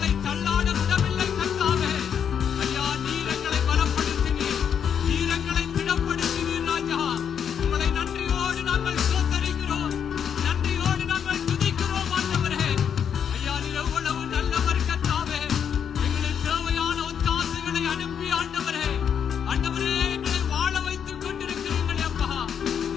தள்ளாட விடவில்லை கர்த்தாவே. ஐயா, நீர் எங்களை பலப்படுத்தினீர், நீர் எங்களை திடப்படுத்தினீர் ராஜா. உங்களை நன்றியோடு நாங்கள் சோதரிக்கிறோம், நன்றியோடு நாங்கள் துதிக்கிறோம் ஆண்டவரே. ஐயா, நீர் எவ்வளவு நல்லவர் கர்த்தாவே. எங்களுக்கு தேவையான ஒத்தாசைகளை அனுப்பி ஆண்டவரே, ஆண்டவரே எங்களை வாழ வைத்துக் கொண்டிருக்கிறீங்களே அப்பா.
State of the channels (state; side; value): quieter; right; 8.0 dB